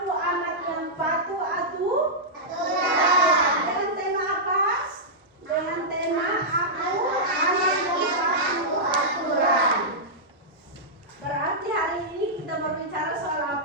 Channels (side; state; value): both; normal; correlation -0.10